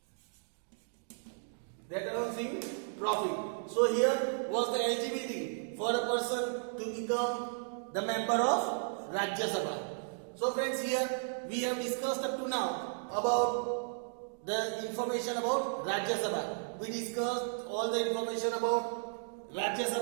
So here was the eligibility for a person to become the member of Rajya Sabha. So friends, here we have discussed up to now about the information about Rajya Sabha. We discussed all the information about Rajya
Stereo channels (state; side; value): silent; left; digital silence